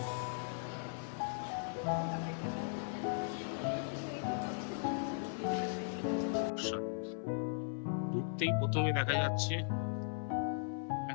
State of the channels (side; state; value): right; silent; 52 dB below the other